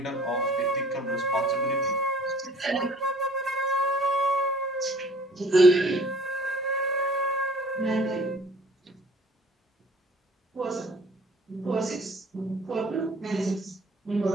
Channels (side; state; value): both; normal; correlation 0.52